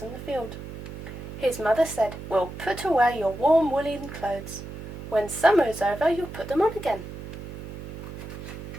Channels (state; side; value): noise; right; hum, 10 dB below the sound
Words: on the field. His mother said, "We'll put away your warm woolen clothes. When summer is over, you'll put them on again."